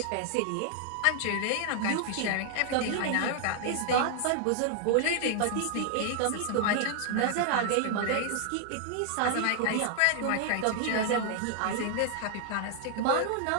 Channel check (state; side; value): different; both; correlation 0.00